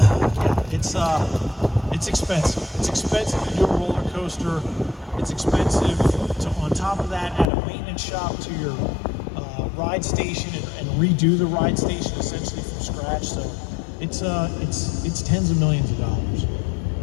It's expensive. It's expensive to do a roller coaster. It's expensive to, on top of that, add a maintenance shop to your ride station and redo the ride station essentially from scratch. So it's tens of millions of dollars.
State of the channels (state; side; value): drops out; right; at 7.5 s